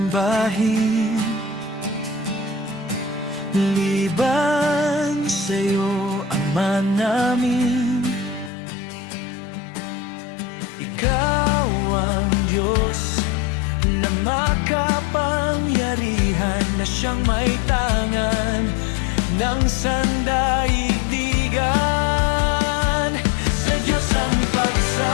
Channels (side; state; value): right; drops out; at 8.5 s